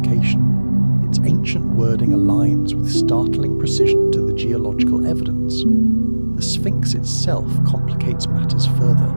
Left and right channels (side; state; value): both; inverted; correlation -1.00